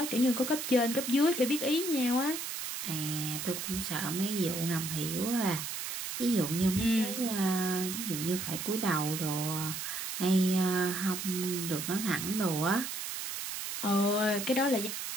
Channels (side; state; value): right; noise; hiss, 5 dB below the sound